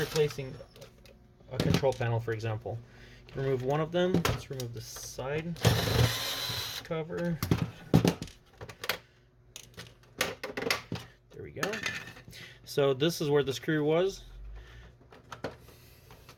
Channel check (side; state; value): both; identical; correlation 1.00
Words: a control panel, for example, you can remove one of them. Let's remove the side cover. There we go. So this is where the screw was.